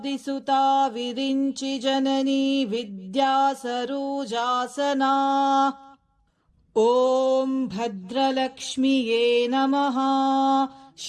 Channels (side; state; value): both; identical; correlation 1.00